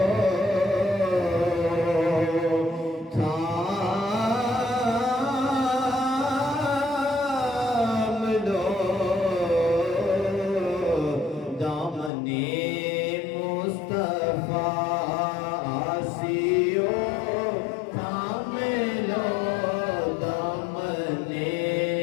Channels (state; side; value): drops out; right; at 12.1 s